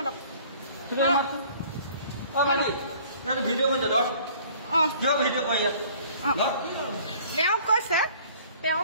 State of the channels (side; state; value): both; inverted; correlation -0.53